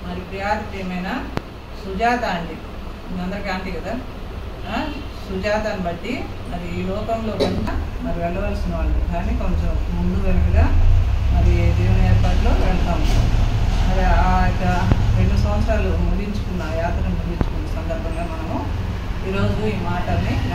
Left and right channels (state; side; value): identical; both; correlation 1.00